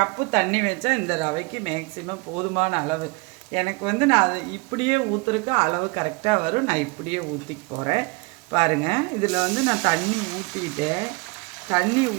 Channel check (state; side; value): quieter; left; 27.7 dB